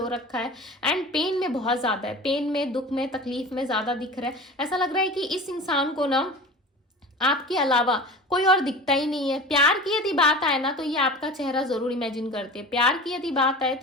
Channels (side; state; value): both; normal; correlation 0.36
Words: रखा है, एंड पेन में बहुत ज़्यादा है, पेन में, दुख में, तकलीफ में ज़्यादा दिख रहा है। ऐसा लग रहा है कि इस इंसान को ना आपके अलावा कोई और दिखता ही नहीं है। प्यार की यदि बात आए ना तो ये आपका चेहरा जरूर इमेजिन करते हैं, प्यार की यदि बात आए